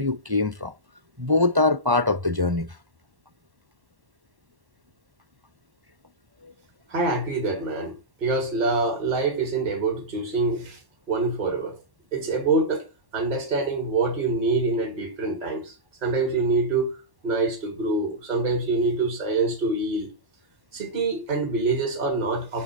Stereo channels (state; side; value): late; left; 1.1 ms